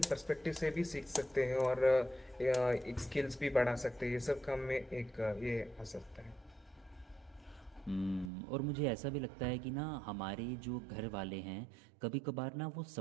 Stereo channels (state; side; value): drops out; left; at 8.3 s